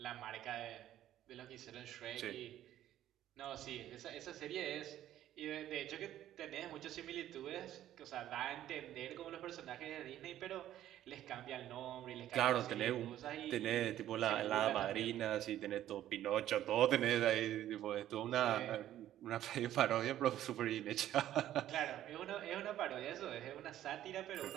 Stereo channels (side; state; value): left; quieter; 12.5 dB